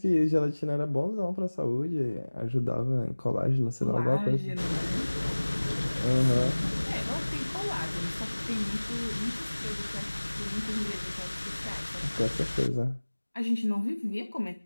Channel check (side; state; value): both; inverted; correlation -1.00